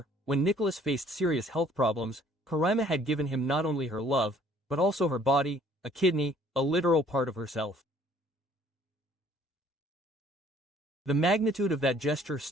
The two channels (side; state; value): both; normal; correlation 0.58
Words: when Nicholas faced serious health problems, Coraima had given him not only her love, but also her body, a kidney, a literal part of herself. The magnitude of that gesture